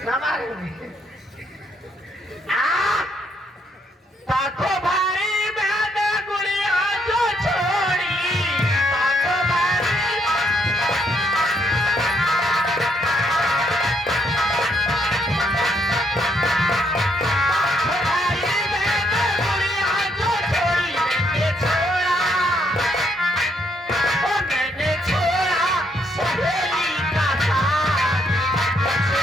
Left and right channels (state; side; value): normal; both; correlation 0.73